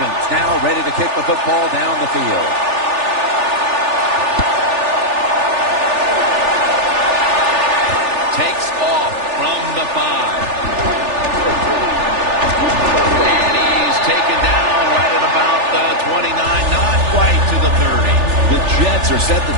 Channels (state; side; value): late; left; 3.4 ms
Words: now ready to kick the football down the field. Takes off from the 5. And he's taken down right at about the 29, not quite to the 30. The Jets are set to